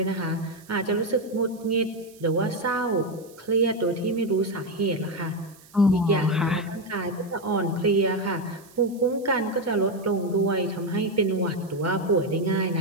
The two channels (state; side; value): noise; right; hiss, 25 dB below the sound